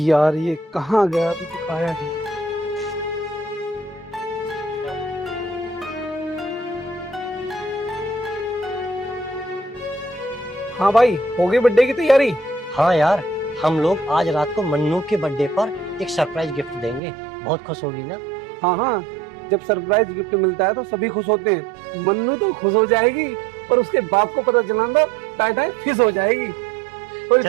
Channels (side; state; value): left; drops out; at 17.0 s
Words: ये कहाँ गया, अभी तक आया नहीं। हाँ भाई, हो गई बर्थडे की तैयारी? हाँ यार, हम लोग आज रात को मन्नू के बर्थडे पर एक सरप्राइज गिफ्ट देंगे। बहुत खुश होगी ना? हाँ हाँ, जब सरप्राइज गिफ्ट मिलता है तो सभी खुश होते हैं। मन्नू तो खुश हो जाएगी और उसके बाप को पता चला तो टाटा फिश हो जाएगी।